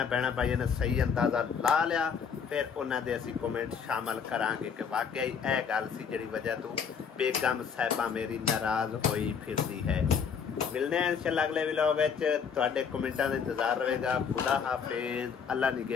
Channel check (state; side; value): quieter; right; 6.7 dB